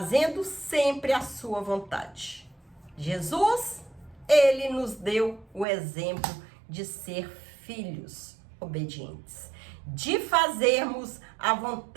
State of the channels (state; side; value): drops out; left; at 5.7 s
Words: sempre a sua vontade. Jesus, ele nos deu o exemplo de ser filhos obedientes, de fazermos a